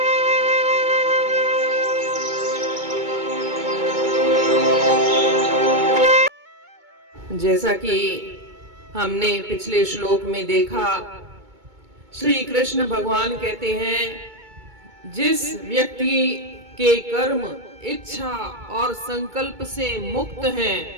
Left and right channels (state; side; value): late; left; 2.2 ms